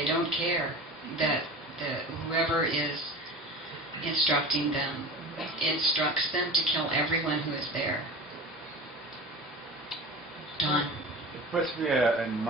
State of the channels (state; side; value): normal; both; correlation 0.33